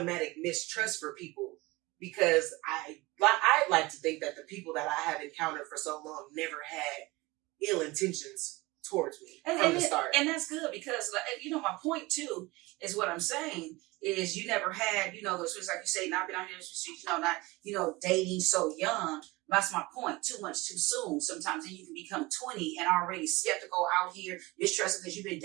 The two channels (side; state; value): left; quieter; 22.2 dB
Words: mistrust for people, because I like to think that the people that I have encountered for so long never had ill intentions towards me from the start. And that's good, because, my point too is what I'm saying is you never had, those things, like you say, not been out here in the streets, not, dating so young. That's my point. Too much too soon sometimes. And you can become 20 and already skeptical out here, mistrusting because you've been